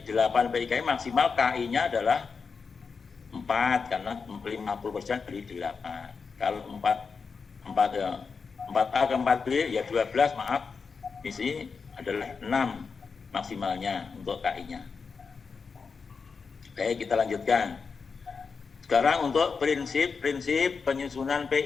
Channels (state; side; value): quieter; right; 5.2 dB